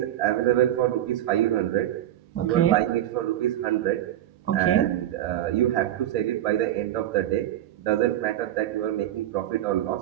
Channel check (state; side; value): quieter; left; 12.5 dB